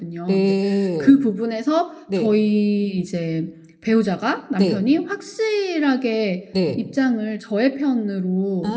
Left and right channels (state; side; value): identical; both; correlation 1.00